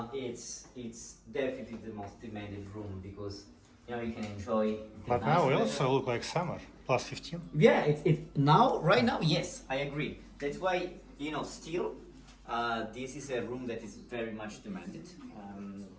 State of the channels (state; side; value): identical; both; correlation 1.00